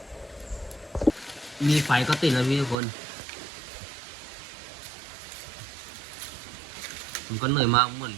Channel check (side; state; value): left; drops out; at 2.8 s